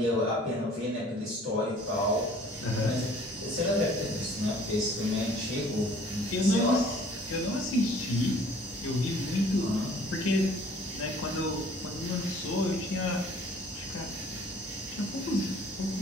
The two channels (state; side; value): normal; both; correlation 0.53